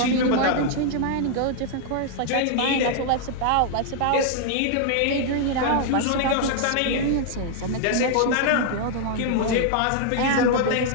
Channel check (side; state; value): both; different; correlation 0.00